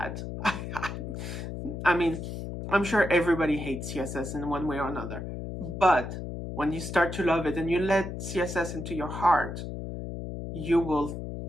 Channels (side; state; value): left; noise; hum, 7 dB below the sound